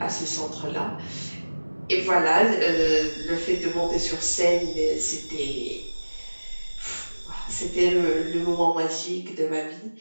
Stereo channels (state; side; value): inverted; both; correlation -1.00